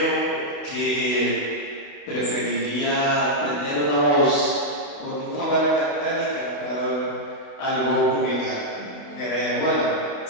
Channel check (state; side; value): late; right; 28 ms